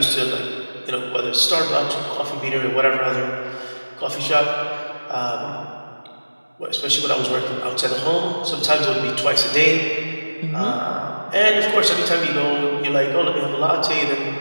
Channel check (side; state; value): both; inverted; correlation -1.00